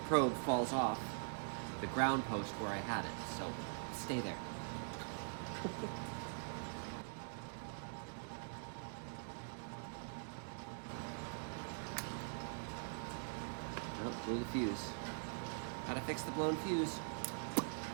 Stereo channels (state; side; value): silent; left; digital silence